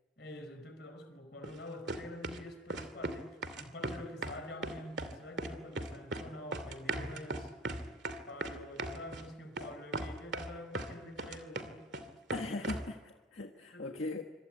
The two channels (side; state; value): both; normal; correlation 0.41